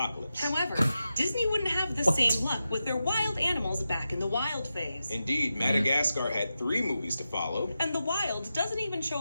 However, Disney wouldn't have the same luck with their wild animals back in the wild phase. Indeed, Madagascar had 3 movies to follow. And the wild doesn't even show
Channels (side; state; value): both; inverted; correlation -0.91